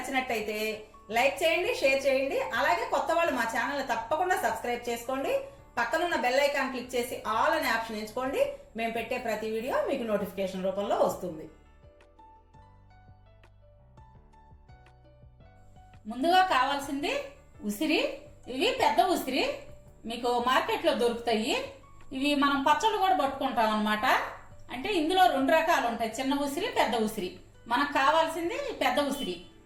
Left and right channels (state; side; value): identical; both; correlation 1.00